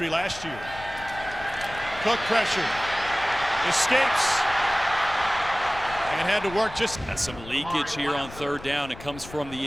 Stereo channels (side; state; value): left; noise; rumble, 15 dB below the sound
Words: last year. Cook pressure, escapes, and had to work just. That's some leakage here on third down. It comes from the